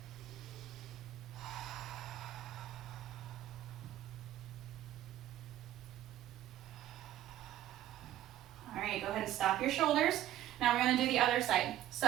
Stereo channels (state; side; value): quieter; left; 12.9 dB